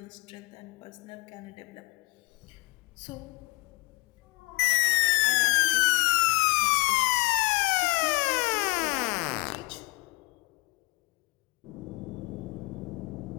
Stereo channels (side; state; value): right; quieter; 25.6 dB